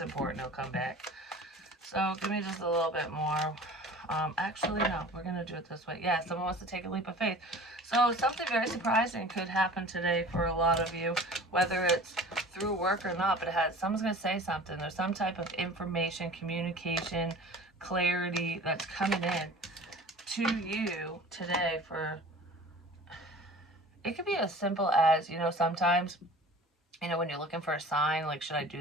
it'll come back. So give me just a little bit more. Actually, no. We're going to do it this way. Yeah, someone wants to take a leap of faith. So something very surprising could happen today for a lot of you, whether it's through work or not, but someone's going to say something. There's some type of information, communication, clarity that's coming in to you today for... It could be as simple as, sometimes... when you're looking for a sign, like, should I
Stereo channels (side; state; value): both; normal; correlation 0.42